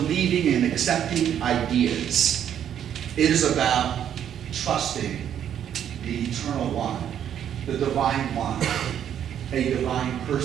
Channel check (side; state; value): left; quieter; 9.6 dB